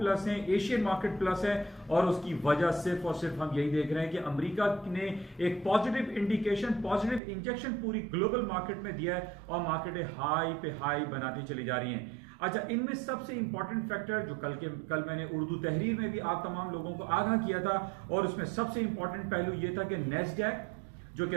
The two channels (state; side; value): drops out; left; at 7.2 s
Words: ہیں, ایشین مارکیٹ پلس ہے, اور اس کی وجہ صرف اور صرف ہم یہی دیکھ رہے ہیں کہ امریکہ نے ایک پازیٹیو انڈیکیشن, پازیٹیو انجیکشن پوری گلوبل مارکیٹ میں دیا ہے, اور مارکیٹیں ہائی پہ ہائی بناتی چلی جا رہی ہیں. اچھا, ان میں سب سے امپورٹنٹ فیکٹر جو کل میں نے اردو تحریر میں بھی آپ تمام لوگوں کو آگاہ کیا تھا, اور اس میں سب سے امپورٹنٹ پہلو یہ تھا کہ نیسڈیک جو